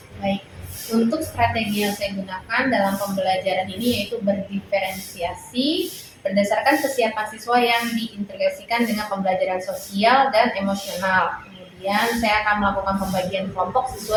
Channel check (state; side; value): identical; both; correlation 1.00